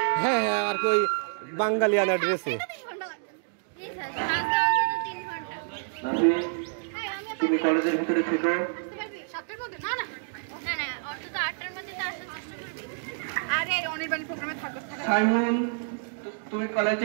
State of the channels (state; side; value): silent; left; digital silence